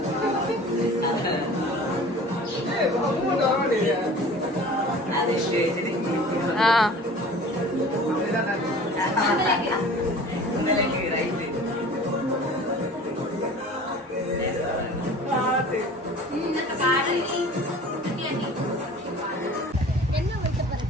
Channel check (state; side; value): normal; both; correlation 0.43